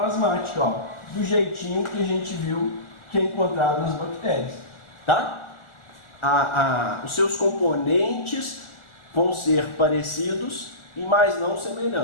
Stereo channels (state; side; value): late; right; 1.4 ms